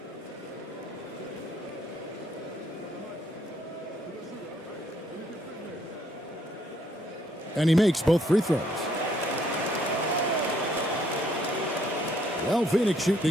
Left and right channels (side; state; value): both; normal; correlation 0.68